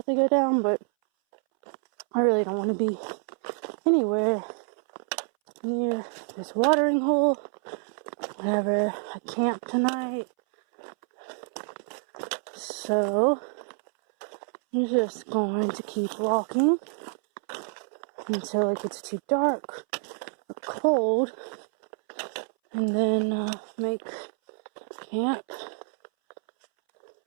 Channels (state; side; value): silent; left; 60 dB below the other